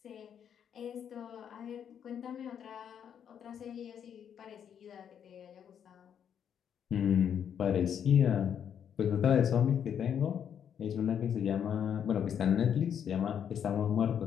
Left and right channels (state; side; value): quieter; right; 8.5 dB